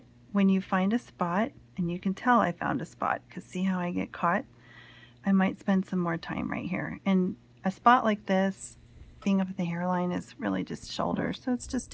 when you find a spot, and you can tell I found a spot because see how I get caught? I might spend some more time right here. And a spot like this, being up at the hairline, is really just shoulder, so it's just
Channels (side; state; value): both; identical; correlation 1.00